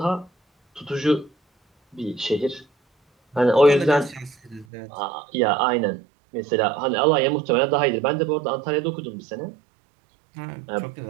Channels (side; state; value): left; drops out; at 4.7 s